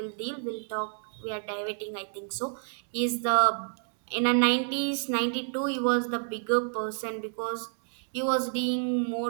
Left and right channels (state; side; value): silent; left; 56 dB below the other